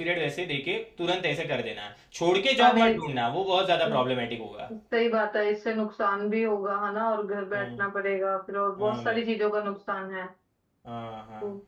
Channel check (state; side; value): identical; both; correlation 1.00